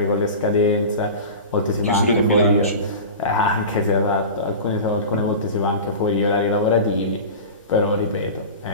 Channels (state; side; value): inverted; both; correlation -0.31